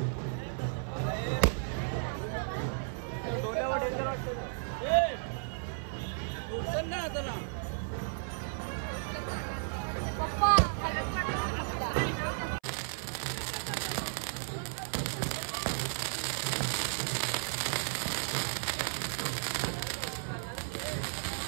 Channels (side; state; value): left; silent; 55 dB below the other